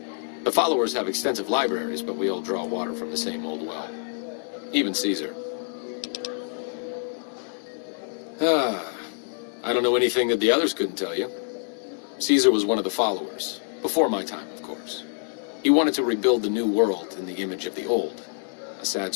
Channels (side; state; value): right; silent; 61 dB below the other